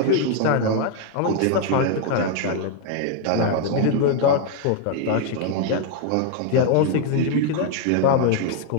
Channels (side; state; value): both; different; correlation 0.00